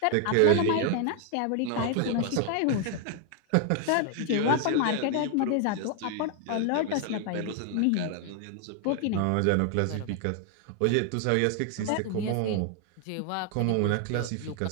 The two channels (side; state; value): both; different; correlation 0.00